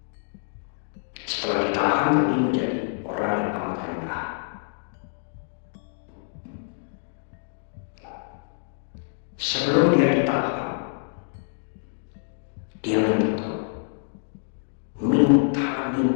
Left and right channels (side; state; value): right; silent; digital silence